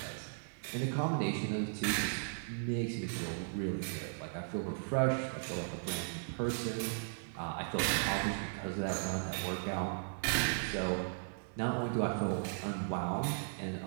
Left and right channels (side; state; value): left; silent; 53 dB below the other